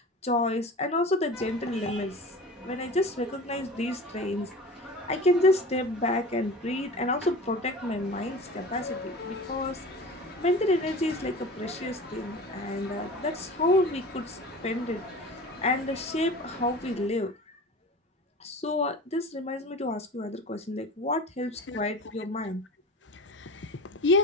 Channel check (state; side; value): normal; both; correlation 0.36